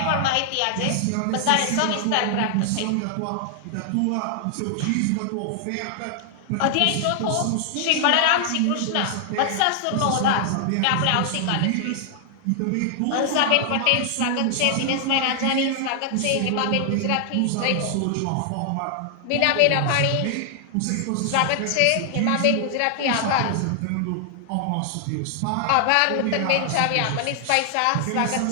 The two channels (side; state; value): both; different; correlation 0.00